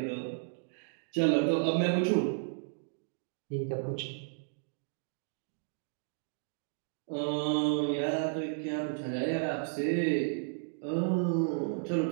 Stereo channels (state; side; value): silent; left; digital silence